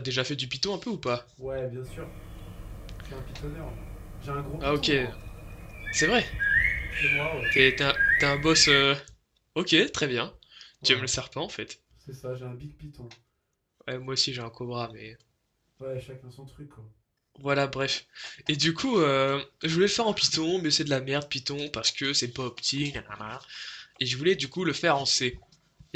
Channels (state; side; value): identical; both; correlation 1.00